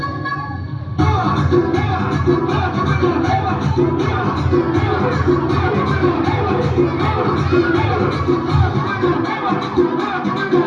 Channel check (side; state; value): both; identical; correlation 1.00